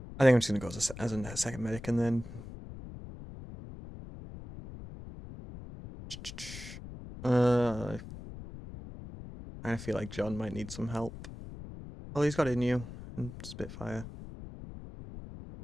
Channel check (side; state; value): left; noise; rumble, 12 dB below the sound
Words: I think I'm just gonna go as a second medic and then I feel like John might need some help. Oh, he's got Inu and Spitfire.